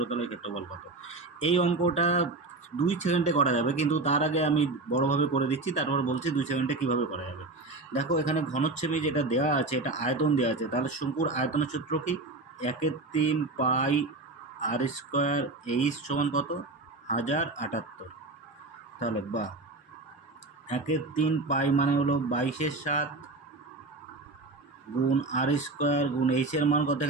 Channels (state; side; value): quieter; left; 3.3 dB